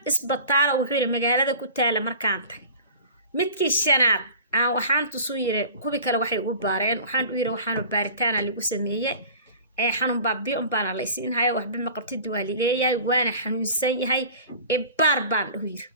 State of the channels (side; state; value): both; inverted; correlation -0.41